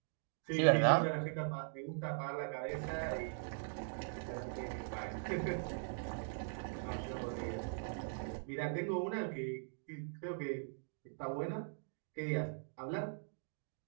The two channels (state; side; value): silent; left; digital silence